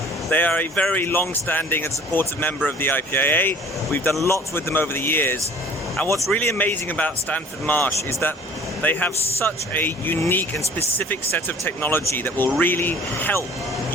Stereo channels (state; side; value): normal; both; correlation 0.49